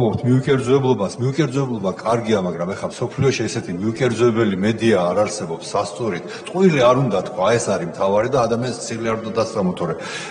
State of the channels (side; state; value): both; identical; correlation 1.00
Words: მიუკერძოებლობა კარგია, მაგრამ ეხლა სოფლიოში ესეთი მიუკერძოებელი მედია არ არსებობს სასწორით. ტყუილი არ უნდა თქვა, ეს არის მთავარი და ადამიანს ცილი არ უნდა დასწამოთორე.